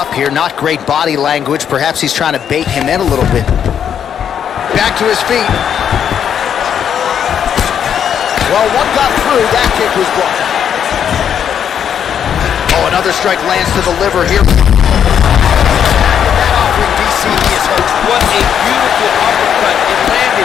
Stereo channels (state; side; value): quieter; right; 8.6 dB